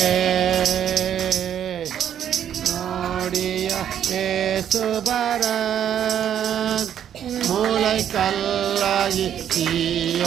நோடிய ஏசுபரன் மூளை கல்லாகி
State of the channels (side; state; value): left; quieter; 9.7 dB